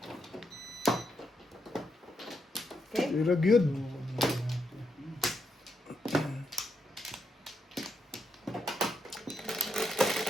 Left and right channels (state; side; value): normal; both; correlation 0.81